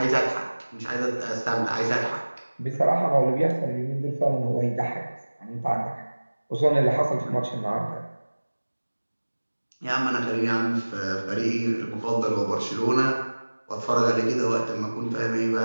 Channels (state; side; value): inverted; both; correlation -1.00